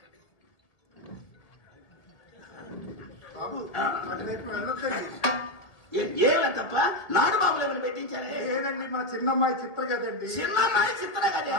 బాబు అటువైపు వెళ్ళొద్దండి ఏమని తప్ప నాటు బాబులు ఏమైనా పెట్టించారే లేదండి మా చిన్నమ్మాయి చిత్ర కదండి చిన్నమ్మాయి చిత్ర కదా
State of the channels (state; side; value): late; right; 1.9 ms